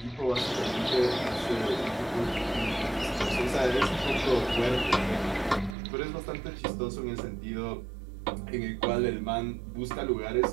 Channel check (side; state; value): left; drops out; at 5.8 s